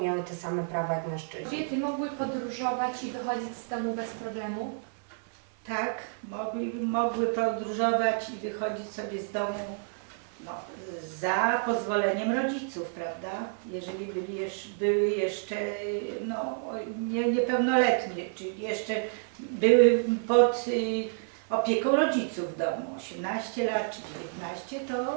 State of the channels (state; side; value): silent; left; 55 dB below the other